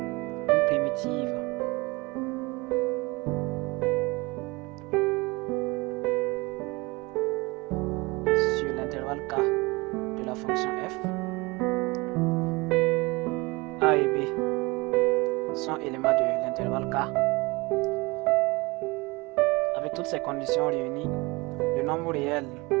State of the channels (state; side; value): quieter; left; 24.6 dB